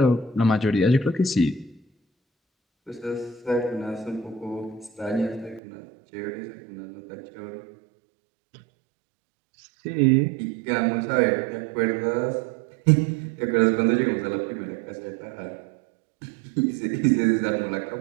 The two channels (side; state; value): left; drops out; at 5.6 s